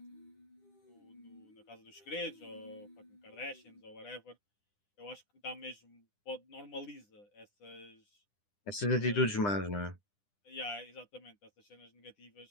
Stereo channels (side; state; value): right; late; 9.9 ms